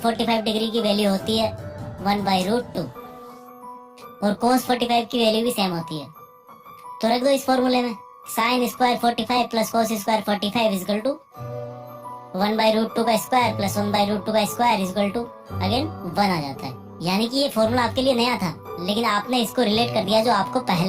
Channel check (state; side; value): identical; both; correlation 1.00